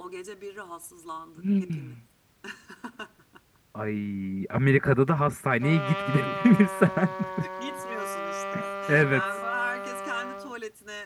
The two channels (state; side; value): identical; both; correlation 1.00